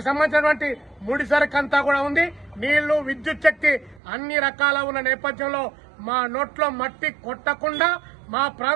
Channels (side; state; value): left; drops out; at 4.0 s